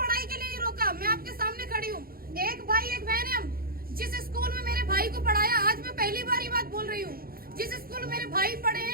के लिए नहीं रोका, मैं आपके सामने खड़ी हूँ, एक भाई एक बहन है। हम जिस स्कूल में मेरे भाई को पढ़ाया, आज मैं पहली बार ये बात बोल रही हूँ, जिस स्कूल में मेरे भाई पढ़े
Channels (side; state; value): left; late; 0.43 ms